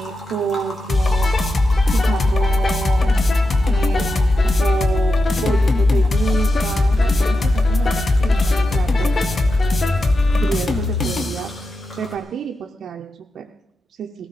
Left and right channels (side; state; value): both; normal; correlation 0.89